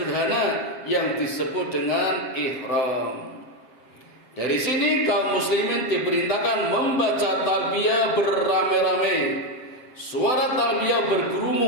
yang disebut dengan ihram. Dari sini kaum muslimin diperintahkan membaca talbiyah beramai-ramai. Suara talbiyah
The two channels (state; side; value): late; right; 7.9 ms